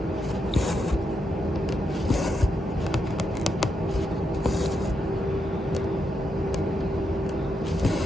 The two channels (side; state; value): both; normal; correlation 0.83